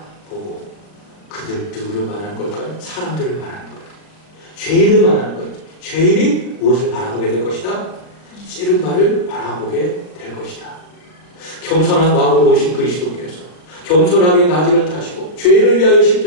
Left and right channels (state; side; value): late; right; 39 ms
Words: 그들 누구를 말하는 걸까요? 사람들을 말하는 거예요. 죄인을 말하는 거예요. 죄인이 무엇을 바라보게 될 것이다? 찌른 바를 바라보게 될 것이다. 겸손한 마음으로 오신 그리스도께서 겸손하게 나귀를 타시고 죄인을 위하여